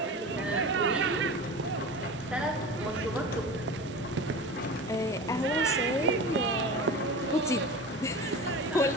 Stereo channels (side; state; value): both; normal; correlation 0.32